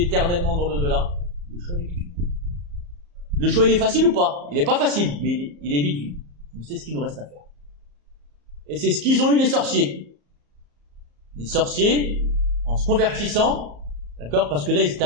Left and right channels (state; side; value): late; left; 34 ms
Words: dans l'au-delà? Le choix, il est vite vu. Le choix, il est facile ou pas? Il est pas facile, mais il est vite vu. Donc c'est ce qu'il nous reste à faire. Et c'est ce qu'ils ont eu les sorciers. Les sorciers, en se convertissant, d'accord, parce que là, ils étaient